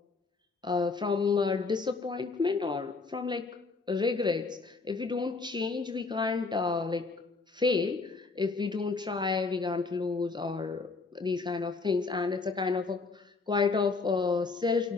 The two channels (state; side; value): quieter; right; 4.2 dB